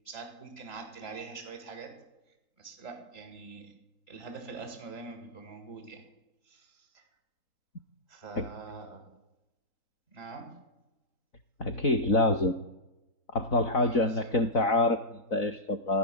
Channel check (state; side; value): late; right; 3.8 ms